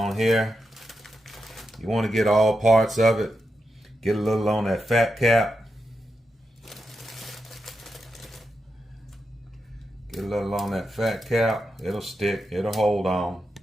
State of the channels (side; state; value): both; normal; correlation 0.87